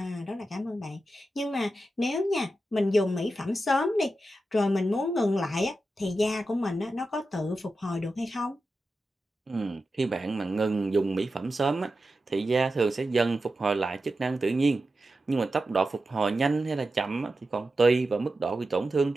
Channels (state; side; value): normal; both; correlation 0.91